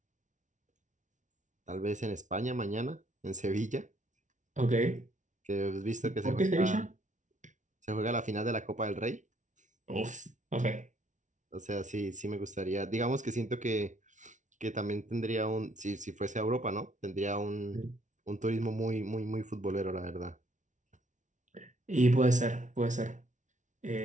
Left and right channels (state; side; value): late; left; 0.36 ms